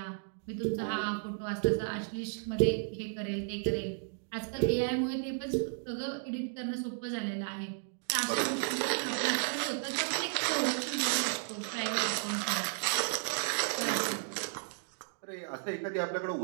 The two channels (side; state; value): left; silent; digital silence